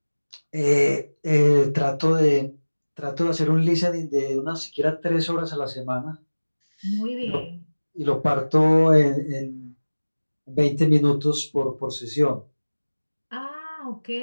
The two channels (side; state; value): both; inverted; correlation -1.00